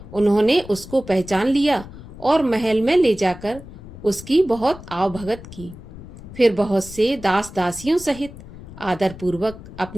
उन्होंने उसको पहचान लिया और महल में ले जाकर उसकी बहुत आवभगत की। फिर बहुत से दास दासियों सहित आदरपूर्वक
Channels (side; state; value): left; noise; rumble, 16 dB below the sound